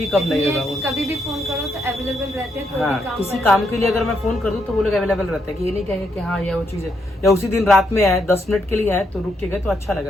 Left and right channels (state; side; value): normal; both; correlation 0.78